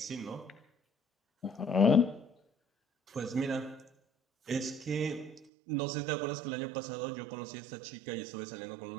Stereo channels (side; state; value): left; drops out; at 5.5 s